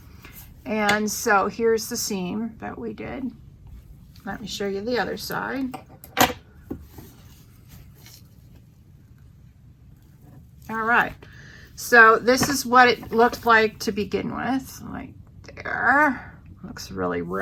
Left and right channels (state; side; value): identical; both; correlation 1.00